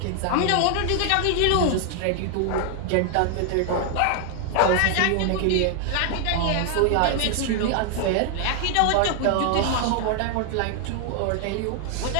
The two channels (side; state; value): both; different; correlation 0.00